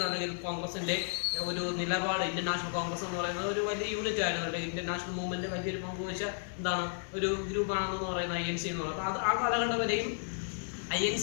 അല്ലെങ്കിൽ കോൺഗ്രസിൻ്റെ ഒരു നിലപാട്, ഇന്ത്യൻ നാഷണൽ കോൺഗ്രസ് എന്ന് പറയുന്നത് ഒരു വലിയ യൂണിറ്റ് ആയിരുന്നു. അല്ലെങ്കിൽ ഇന്ത്യൻ നാഷണൽ മൂവ്മെൻറ്റ് വലിയൊരു പങ്കുവച്ച എന്താണ് ഒരു ഗ്രൂപ്പാണെന്ന് പറയുന്ന INC എന്ന് പറയുന്നത്. അപ്പോൾ ആ കാലഘട്ടം വരെയും INC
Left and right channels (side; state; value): right; silent; digital silence